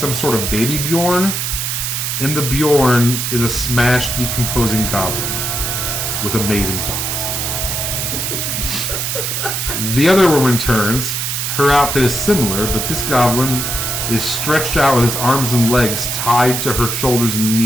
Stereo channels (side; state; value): right; noise; hiss, 2 dB below the sound